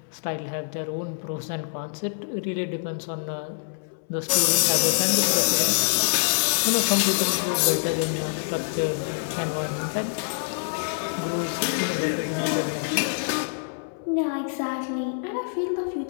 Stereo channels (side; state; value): right; silent; 61 dB below the other